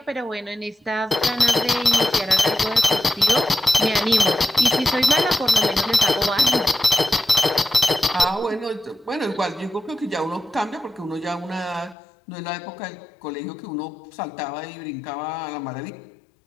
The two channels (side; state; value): right; drops out; at 12.0 s